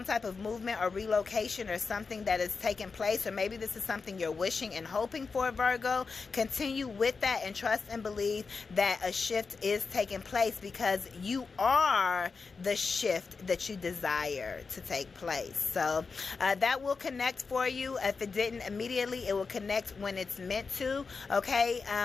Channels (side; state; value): right; quieter; 4.7 dB